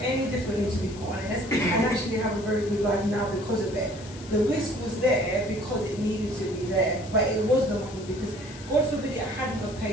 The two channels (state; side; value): noise; left; hiss, 18 dB below the sound